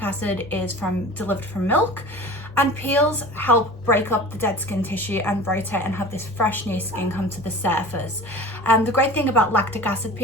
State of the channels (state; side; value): normal; both; correlation 0.38